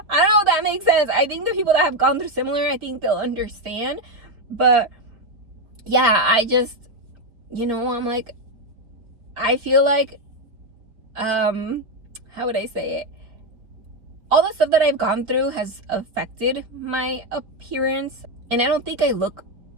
I don't know if that makes sense. I think the people that have gone through similar, I think they'll understand. But yeah, I just, you know, I'm like, I feel like, how would I say it? All the stuff that I've gone through has affected my appearance. And I don't think I look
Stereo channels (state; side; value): late; left; 4.3 ms